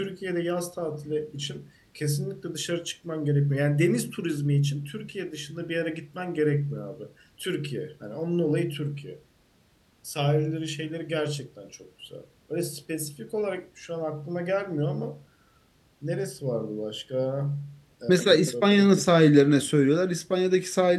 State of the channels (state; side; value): identical; both; correlation 1.00